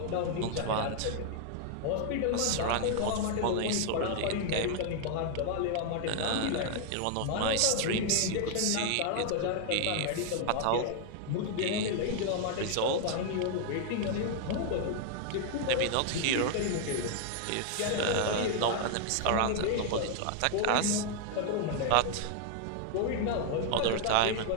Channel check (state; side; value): different; both; correlation 0.00